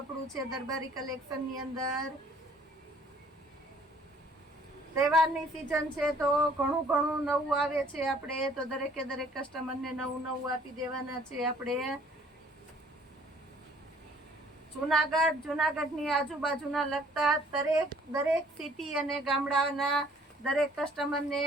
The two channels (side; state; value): both; normal; correlation 0.58